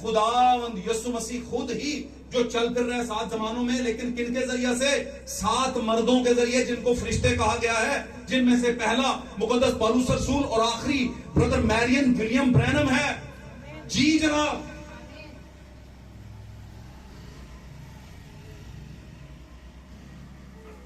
खुदावंद यीशु मसीह खुद ही, जो चल फिर रहे हैं 7 जमानों में। लेकिन किनके जरिए से? 7 मर्दों के जरिए, जिनको फरिश्ते कहा गया है, जिनमें से पहला मुकद्दस पौलुस रसूल और आखिरी ब्रदर मैरियन विलियम ब्रैनम है। जी जनाब।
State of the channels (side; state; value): both; identical; correlation 1.00